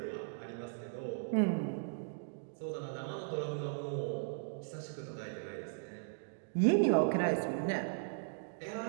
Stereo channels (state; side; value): silent; left; digital silence